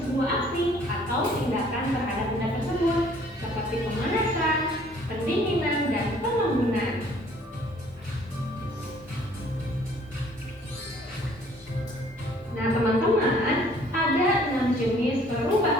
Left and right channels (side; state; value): both; normal; correlation 0.58